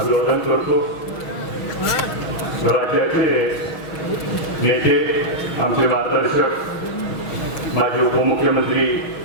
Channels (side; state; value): right; late; 6.3 ms